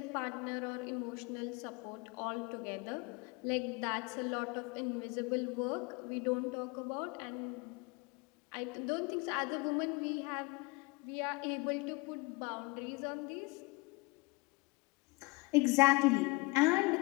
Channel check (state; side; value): quieter; right; 26.1 dB